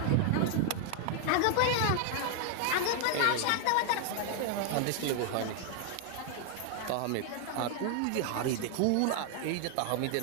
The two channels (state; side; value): different; both; correlation 0.00